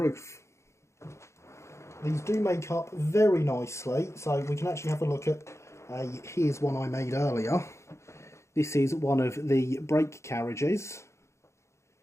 These do make up very nicely, so we can actually have a look at here's one I made earlier. This is one of the brake carriages,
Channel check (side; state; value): right; late; 0.14 ms